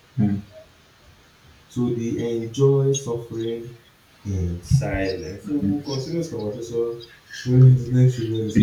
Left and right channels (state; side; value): identical; both; correlation 1.00